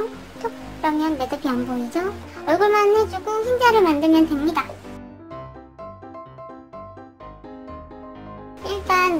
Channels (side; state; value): both; identical; correlation 1.00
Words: 톡! 그러면 매듭이 안 보이죠? 얼굴만 해주고 흰자를 만들면 됩니다. 일단